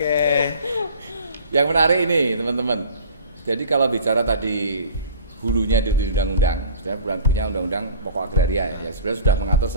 Yang menarik ini teman-teman. Jadi kalau bicara tadi hulunya di undang-undang, sebenarnya punya undang-undang pokok agraria ya, yang sebenarnya sudah mengatur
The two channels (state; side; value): inverted; both; correlation -0.43